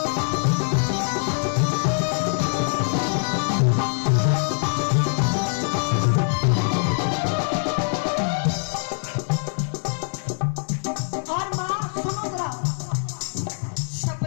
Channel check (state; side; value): silent; right; 62 dB below the other